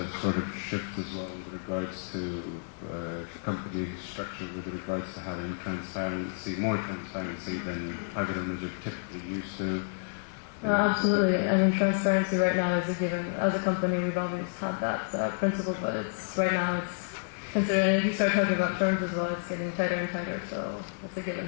sort of shift as well with regards to company structure, with regards to having transparency, more transparency than private owners are typically used to? No, absolutely. I mean, transparency right now is a given. As a company, we've always had that principle, but right now it's considered, if you start talking about terms as well, it's getting tighter and tighter, so it's a given.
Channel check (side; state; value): right; silent; digital silence